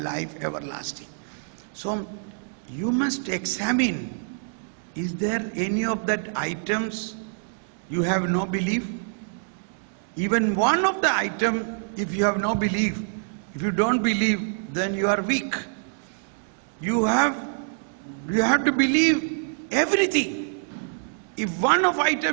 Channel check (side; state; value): left; silent; digital silence